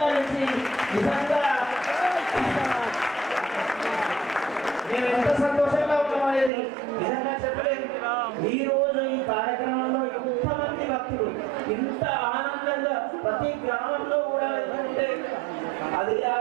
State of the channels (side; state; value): left; drops out; at 6.5 s